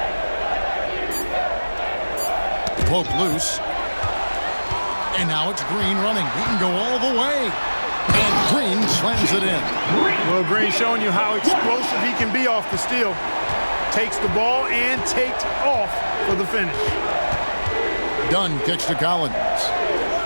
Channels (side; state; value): both; inverted; correlation -1.00